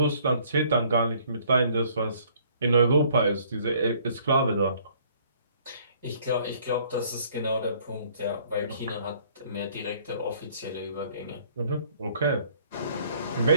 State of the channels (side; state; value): both; inverted; correlation -0.59